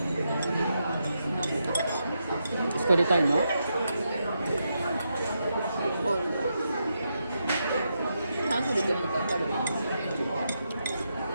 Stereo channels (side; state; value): both; inverted; correlation -0.84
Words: 作りたいの？炭水って何か分かる？